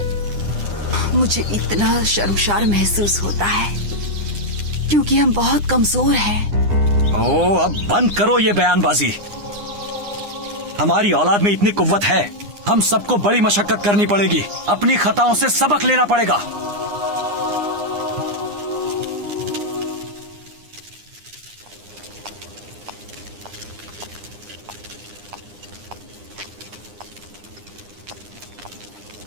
मुझे इतना शर्मशार महसूस होता है क्योंकि हम बहुत कमजोर हैं। ओ, अब बंद करो ये बयानबाजी। हमारी औलाद में इतनी कुव्वत है। हम सबको बड़ी मशक्कत करनी पड़ेगी, अपनी खताओं से सबक लेना पड़ेगा।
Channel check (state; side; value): late; left; 9.8 ms